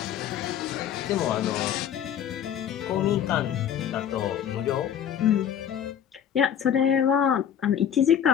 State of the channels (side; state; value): right; quieter; 9.2 dB